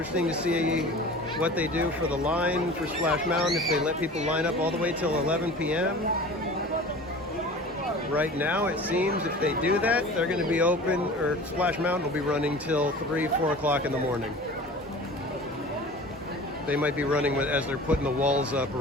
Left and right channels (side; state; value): both; normal; correlation 0.39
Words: to see what they do for the line for Splash Mountain, if they let people line up all the way till 11 p.m. Right now, it seems if they do that, they're going to be open, or Splash Mountain will be running till 3, 4 o'clock in the morning. They might be running as they're putting the walls up